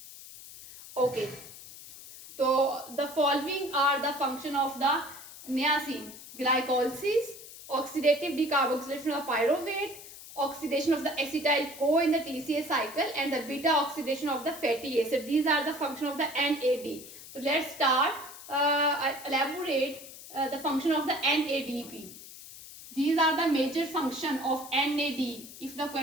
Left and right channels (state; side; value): noise; left; hiss, 15 dB below the sound